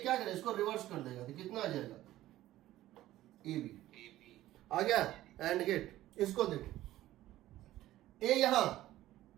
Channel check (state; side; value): quieter; left; 14.9 dB